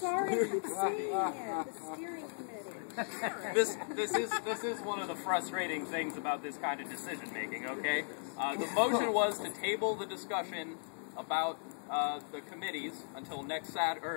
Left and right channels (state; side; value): silent; right; digital silence